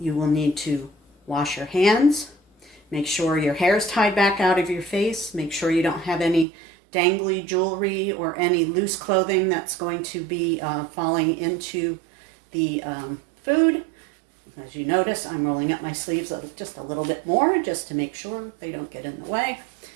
will need to wash your hands. Make sure your hair is tied back out of your face. Make sure you don't have any dangly jewelry or any loose clothing that's going to be falling into the food. As you notice, I'm rolling up my sleeves just a little bit more just to make sure they don't get in the way.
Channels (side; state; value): left; drops out; at 6.5 s